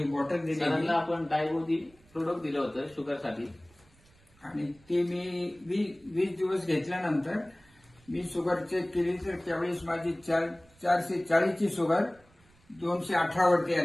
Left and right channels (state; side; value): noise; right; rumble, 30 dB below the sound